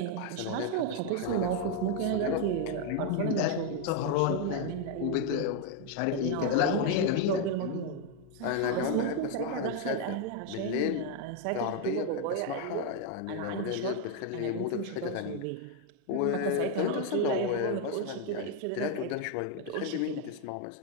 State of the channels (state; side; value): different; both; correlation 0.01